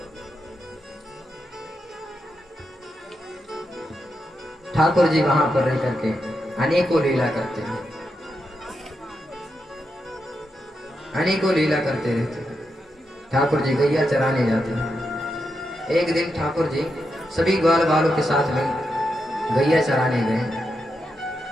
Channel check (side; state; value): both; normal; correlation 0.85